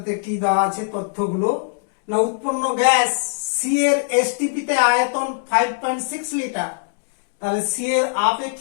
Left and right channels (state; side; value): silent; right; digital silence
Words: কি দেওয়া আছে তথ্যগুলো না, উৎপন্ন গ্যাস সি এর এসটিপি তে আয়তন 5.6 লিটার। তাহলে সি এর